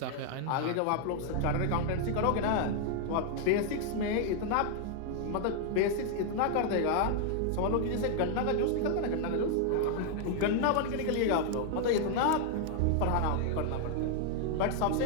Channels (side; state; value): both; different; correlation 0.00